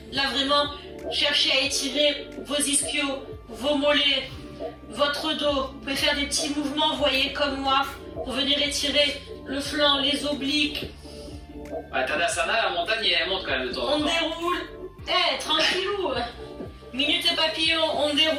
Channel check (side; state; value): both; identical; correlation 1.00